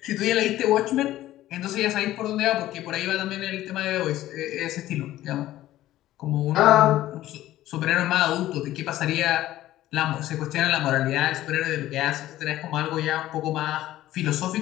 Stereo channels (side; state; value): right; quieter; 14.5 dB